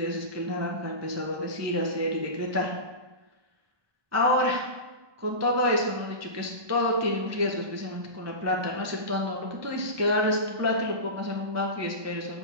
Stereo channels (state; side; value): late; left; 1.2 ms